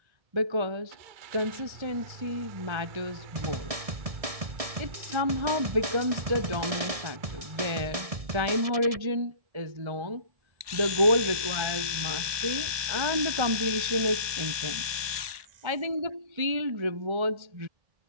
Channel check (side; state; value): left; late; 1.2 ms